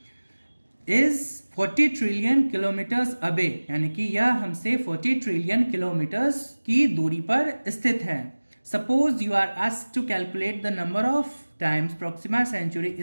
is 40 trillion kilometres away, यानी कि यह हमसे 40 ट्रिलियन किलोमीटर्स की दूरी पर स्थित है। Suppose you are asked to calculate the number of times Proxima Centauri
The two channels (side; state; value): both; inverted; correlation -1.00